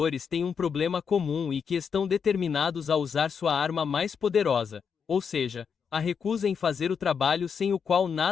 têm um problema comum e que estão determinados a usar sua arma mais poderosa, ou seja, a recusa em fazer o trabalho sem o qual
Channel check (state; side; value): quieter; right; 6.6 dB